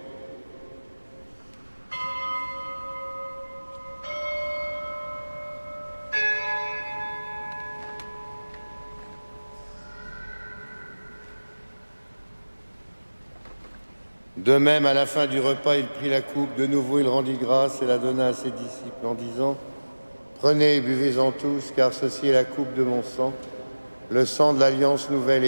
De même, à la fin du repas, il prit la coupe, de nouveau il rendit grâce et la donna à ses disciples en disant « Prenez et buvez-en tous, car ceci est la coupe de mon sang, le sang de l'alliance nouvelle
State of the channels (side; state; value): both; inverted; correlation -1.00